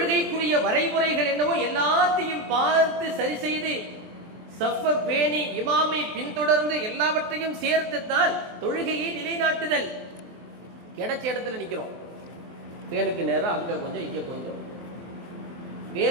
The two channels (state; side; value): late; left; 23 ms